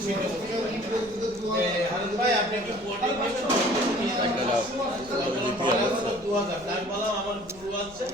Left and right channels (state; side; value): noise; left; rumble, 21 dB below the sound